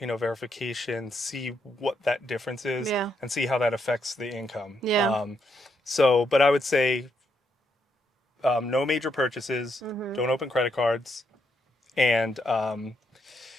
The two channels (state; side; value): normal; both; correlation 0.78